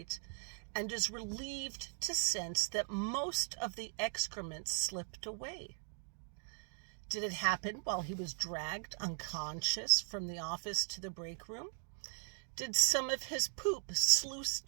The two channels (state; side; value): silent; left; 52 dB below the other